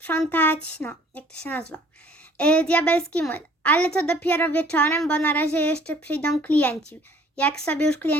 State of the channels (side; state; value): both; normal; correlation 0.56